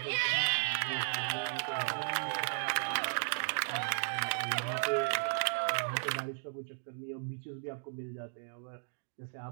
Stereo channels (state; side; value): silent; left; digital silence